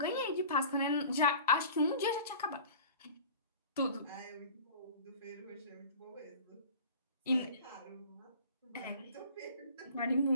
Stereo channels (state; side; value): inverted; both; correlation -0.42